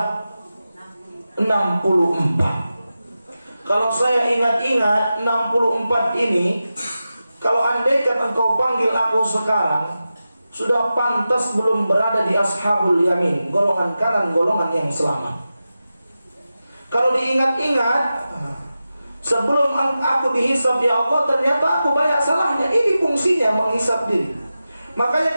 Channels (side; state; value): both; inverted; correlation -0.93